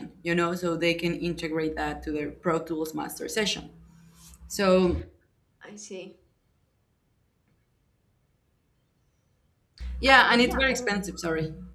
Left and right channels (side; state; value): both; identical; correlation 1.00